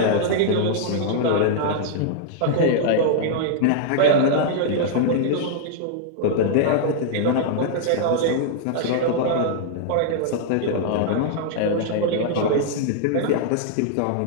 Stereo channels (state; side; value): different; both; correlation -0.01